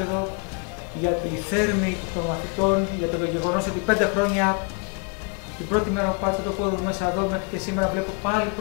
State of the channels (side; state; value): right; quieter; 35.6 dB